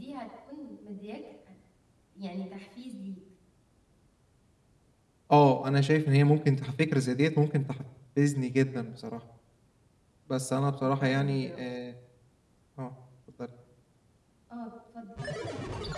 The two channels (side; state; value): both; identical; correlation 1.00